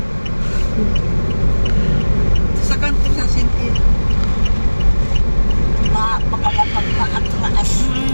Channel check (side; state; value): both; inverted; correlation -1.00